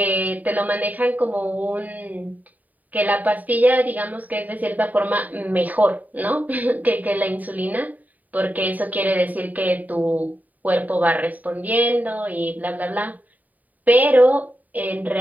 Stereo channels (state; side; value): late; left; 0.078 ms